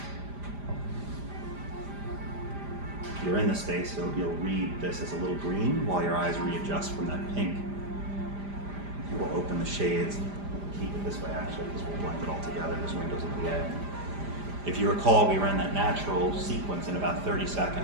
if you're in the space, you'll read this as a little green while your eyes readjust from that pink. We'll open the shades, keep it this way actually, because we'll blend it all together. There's windows at the end. If you recall, we ran that natural sequence in about 30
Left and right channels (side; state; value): left; late; 5.0 ms